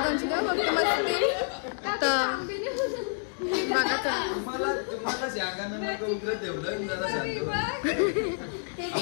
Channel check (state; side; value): silent; right; digital silence